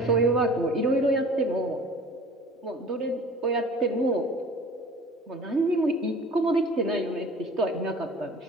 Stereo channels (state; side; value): normal; both; correlation 0.45